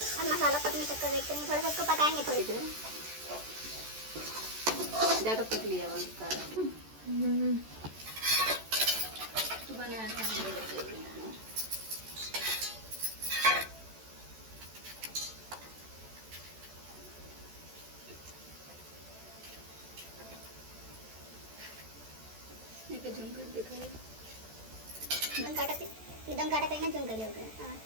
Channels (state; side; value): late; left; 14 ms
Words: मसाला पकने तक का वेट करेंगे, थोड़ा सा इसको पकाएंगे थोड़ी देर। ज़्यादा पक लिया उसका एकदम काटा कहीं ना झुम कर लिया